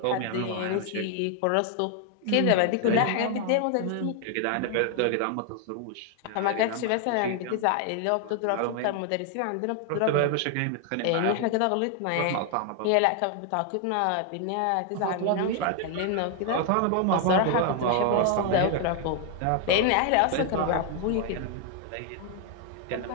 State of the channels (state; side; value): different; both; correlation 0.00